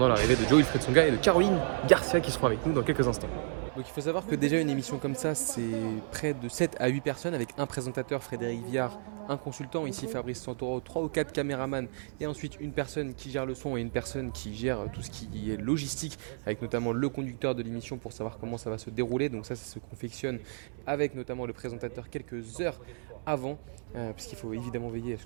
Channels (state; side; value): silent; left; digital silence